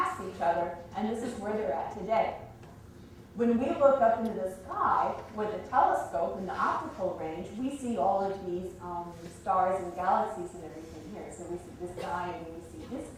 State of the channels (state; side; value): identical; both; correlation 1.00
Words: each other, and this is where they're at today. When we look up into the sky with a telescope in the optical range, we see all of these stars and galaxies and everything here. So we see this guy and we see this